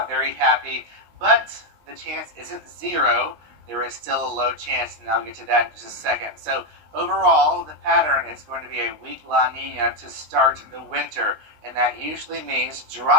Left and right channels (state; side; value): late; left; 19 ms